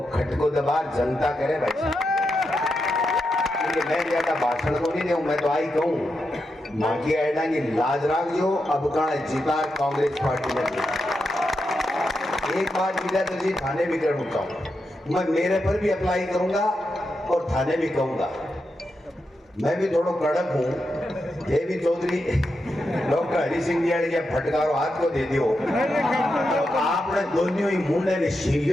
खटको दबार जनता करे भाई। मैं ज्यादा भाषण को नहीं दूं, मैं तो आई कहूं माकी आयडा की लाज राख जो अब का जीता कांग्रेस पार्टी में। एक बात विजय तो जी थाने भी कर उठता हूं, मैं मेरे पर भी अप्लाई करूंगा और थाने भी कहूंगा। मैं भी थोड़ा कड़क हूं, ये भी चौधरी डॉक्टर हरि सिंह जी के फटकारो हाथ को दे दियो तो आपने दोनों ही मुंडे ने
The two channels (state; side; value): normal; both; correlation 0.86